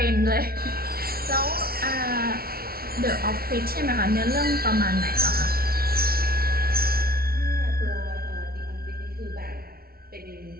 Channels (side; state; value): left; late; 0.44 ms